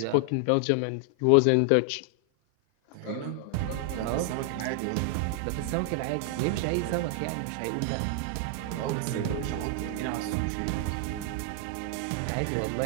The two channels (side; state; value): both; different; correlation 0.00